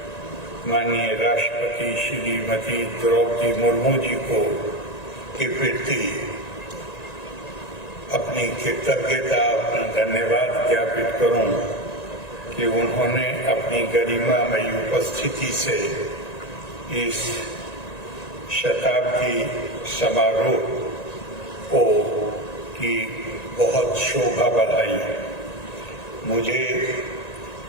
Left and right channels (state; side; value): late; right; 1.9 ms